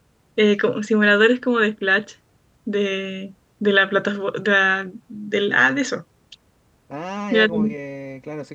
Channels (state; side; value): identical; both; correlation 1.00